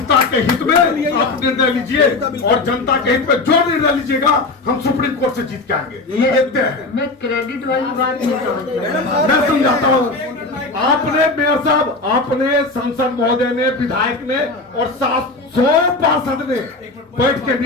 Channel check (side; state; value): right; quieter; 3.3 dB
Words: के हित में आप निर्णय लीजिए और जनता के हित में जो निर्णय लीजिएगा हम सुप्रीम कोर्ट से जीत के आएंगे। ये देखते हैं। मैं क्रेडिट वाली बात नहीं समझ मैं समझाता हूँ। आपने मेयर साहब, आपने सांसद महोदय ने, विधायक ने और 700 पार्षद ने बैठ के